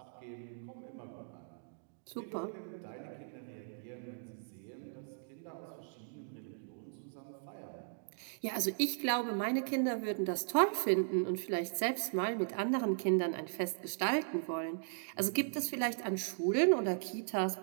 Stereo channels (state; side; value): silent; left; digital silence